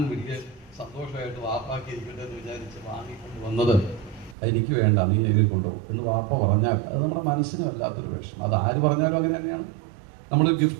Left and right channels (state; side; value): drops out; left; at 4.4 s